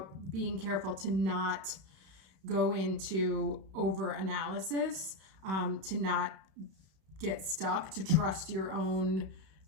being careful to not go into over-analysis, to not get stuck, to trust your own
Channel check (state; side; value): late; left; 31 ms